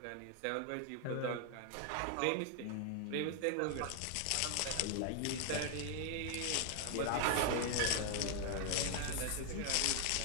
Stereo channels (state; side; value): different; both; correlation 0.00